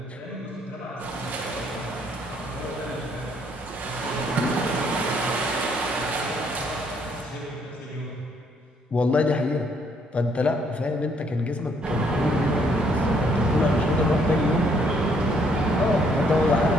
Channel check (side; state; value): both; normal; correlation 0.68